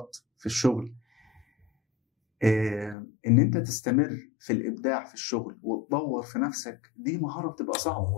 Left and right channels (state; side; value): drops out; right; at 3.0 s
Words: في الشغل. ان انت تستمر في الابداع في الشغل وتطور في نفسك، دي مهاره بتبقى صعبه.